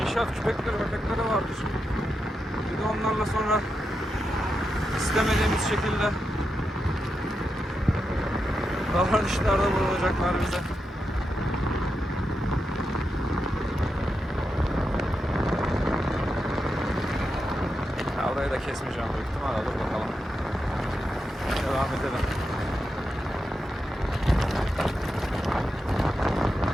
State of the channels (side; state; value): both; normal; correlation 0.87